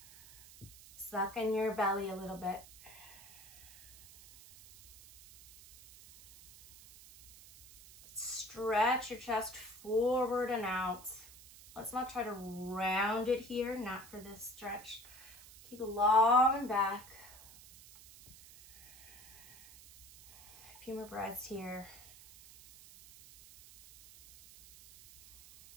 Suck in your belly a little bit. Stretch your chest forward and out. Let's not try to round it here, not for this stretch. Keep it long and back. A few more breaths here.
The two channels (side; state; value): right; noise; hiss, 20 dB below the sound